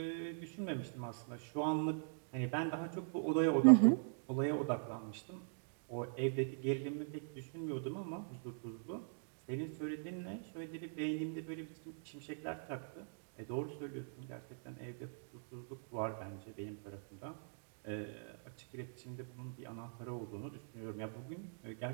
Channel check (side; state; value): left; silent; digital silence